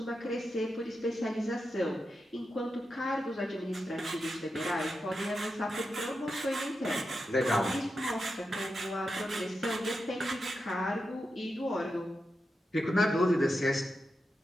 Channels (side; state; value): both; normal; correlation 0.88